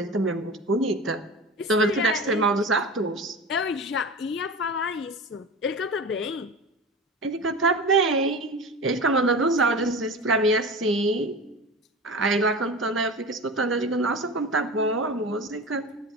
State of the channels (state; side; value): normal; both; correlation 0.30